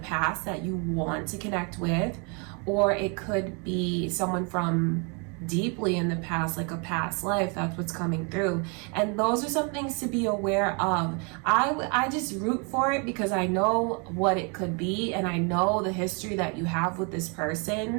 that you want to connect with, or it could be someone from deeply in the past, like a past life. That's what's coming through. And those are some things to be aware of. I just root for it because I know what it could be, and I know the history that you have with this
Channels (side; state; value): left; quieter; 34.3 dB